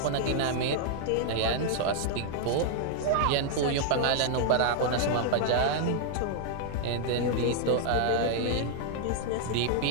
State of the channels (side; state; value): both; different; correlation 0.00